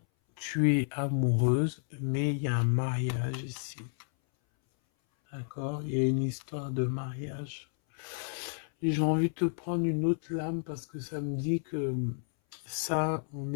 tu es amoureuse, mais il y a un mariage ici. D'accord? Il y a une histoire de mariage. Et j'ai envie de te prendre une autre lame parce que ça me dit que ça, on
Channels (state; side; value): silent; right; 57 dB below the other